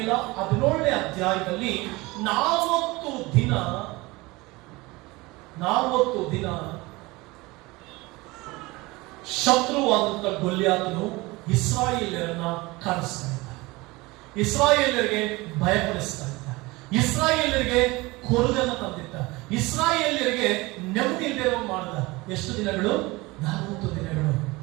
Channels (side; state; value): left; quieter; 22.4 dB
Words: 17ನೇ ಅಧ್ಯಾಯದಲ್ಲಿ 40 ದಿನ ಶತ್ರುವಾದಂತ ಗೊಲ್ಯಾತನು ಇಸ್ರಾಯೇಲ್ಯರನ್ನ ಕಾಡಿಸ್ತಾ ಇದ್ದ, ಇಸ್ರಾಯೇಲ್ಯರಿಗೆ ಭಯಪಡಿಸ್ತಾ ಇದ್ದ, ಇಸ್ರಾಯೇಲ್ಯರಿಗೆ ಕೊರಗನ್ನ ತಂದಿದ್ದ, ಇಸ್ರಾಯೇಲ್ಯರಿಗೆ ನೆಮ್ಮದಿ ಇಲ್ಲದೆ ಮಾಡಿದ. ಎಷ್ಟು ದಿನಗಳು? 40 ದಿನಗಳು.